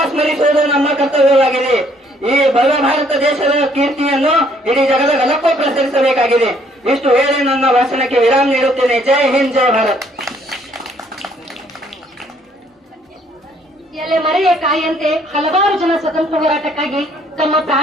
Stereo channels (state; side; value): normal; both; correlation 0.64